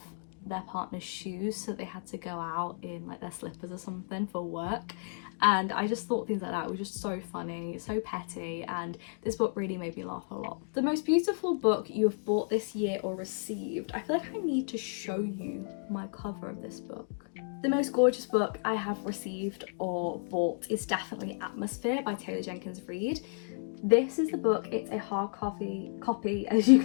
their partner's shoes, so they had to go out in like their slippers or something for work. And I just thought things like that were just so funny, so petty, and this book really made me laugh a lot. The most beautiful book you have bought this year or received. I feel like I need to show you my cover of this book. The most gorgeous book I have received or bought is definitely Atmosphere by Taylor Jenkins Reid. This is the book. It's a hard copy, as you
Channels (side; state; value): right; silent; digital silence